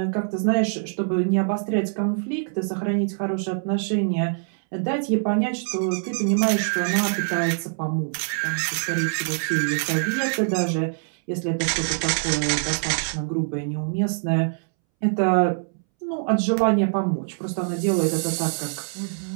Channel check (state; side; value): silent; left; 62 dB below the other